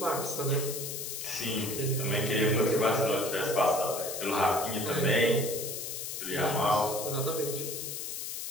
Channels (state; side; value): noise; left; hiss, 5 dB below the sound